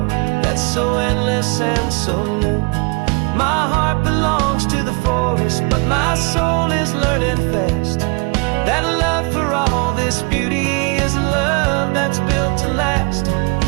that's so endless and so new. My heart belongs to the forest, but my soul is learning fast that love for all this beauty is love that's built to last.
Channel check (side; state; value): left; quieter; 31.8 dB